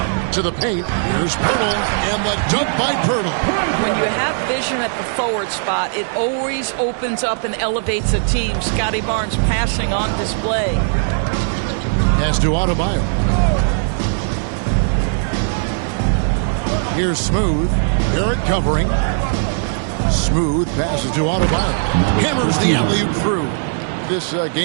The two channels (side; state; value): left; silent; digital silence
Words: To the paint, here's Pirtle, and the dunk by Pirtle. When you have vision at the forward spot, it always opens up and elevates a team. Scotty Barnes passing on display. Pass to Adebayo. Here's Smooth. Barrett covering. Smooth passes to Adebayo. Hammers the alley-oop through. This